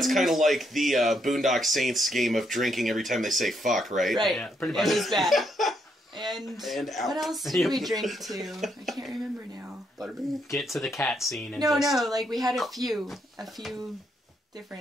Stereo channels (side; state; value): both; normal; correlation 0.76